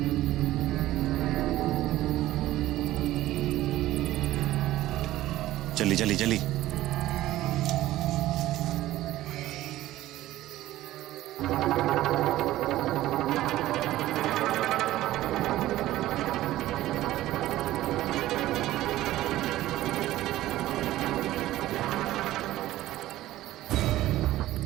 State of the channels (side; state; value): left; quieter; 15.3 dB